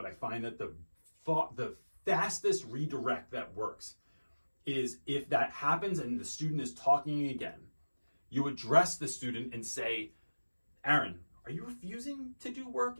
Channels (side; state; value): both; inverted; correlation -1.00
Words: I find that the fastest redirect that works is if that happens and the student is talking again, you address the student and say, Aaron, are you refusing to do work?